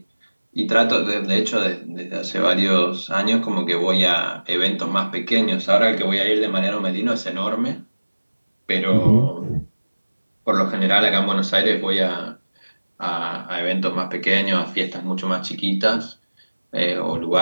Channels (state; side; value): inverted; both; correlation -1.00